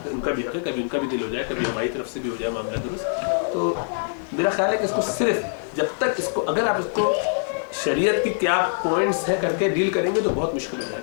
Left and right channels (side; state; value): right; silent; 62 dB below the other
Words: उनका भी हक है, कभी उनका भी दिल हो जाए, कभी हमारी तरफ से भी हो जाए मामला दुरुस्त। तो मेरा ख्याल है कि इसको सिर्फ जब तक इसको अगर आप इसको शरीयत की क्या पॉइंट्स है करके डील करेंगे तो बहुत मुश्किल हो